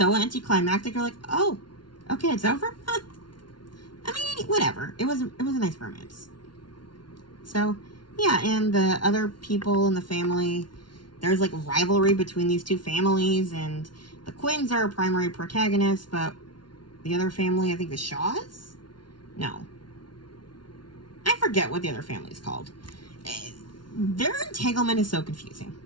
anticlimactic. You're like, oh, okay, it's over? Huh. I mean, whatever. It was a nice romance. So... Yeah, and the other people in the family, there's like rivalry between these two families, and the Quinns are primary protagonists, but the other family, I think the Shaws? No. I forget what the other family is called. Their entanglement is so confusing.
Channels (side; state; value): right; late; 0.71 ms